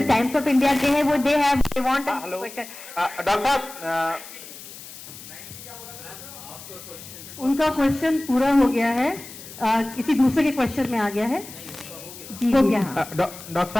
टाइम्स ऑफ इंडिया के हैं, वो they have they want hello doctor साहब, उनका क्वेश्चन पूरा हो गया है, किसी दूसरे के क्वेश्चन में आ गया है जी। हो गया। डॉक्टर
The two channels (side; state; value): left; noise; hiss, 15 dB below the sound